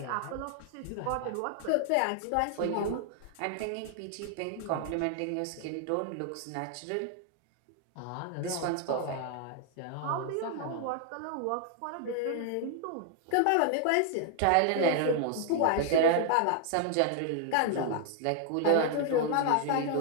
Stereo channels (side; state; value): both; different; correlation 0.00